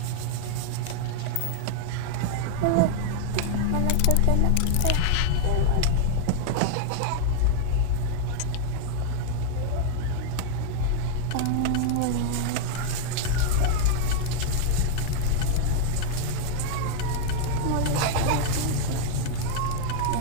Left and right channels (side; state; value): both; different; correlation 0.00